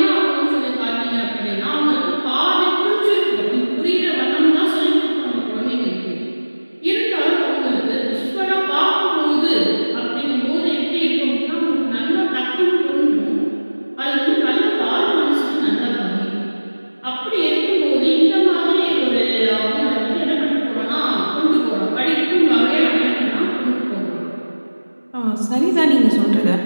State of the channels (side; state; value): both; inverted; correlation -1.00